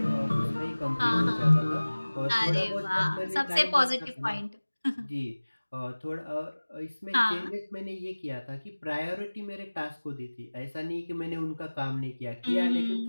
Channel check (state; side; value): inverted; both; correlation -1.00